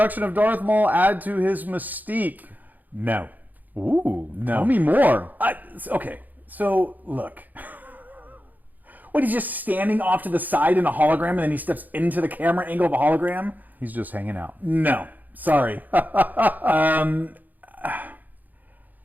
of Darth Maul add to his mystique? No. Ooh, No. tell me more. Okay, so look. What, he's just standing off to the side in a hologram and then he steps into the camera angle of a hologram? He's just hanging out. No. Sorry. I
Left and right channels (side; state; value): left; late; 0.083 ms